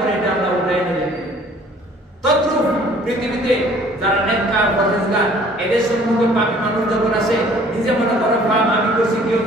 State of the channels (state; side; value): normal; both; correlation 0.55